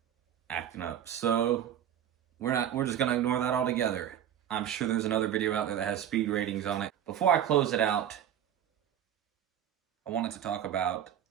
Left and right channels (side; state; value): left; quieter; 10.2 dB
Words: acting up. So we're just gonna ignore that altogether. I'm sure there's another video out there that has speed ratings on it. Before I close it out, I wanted to talk about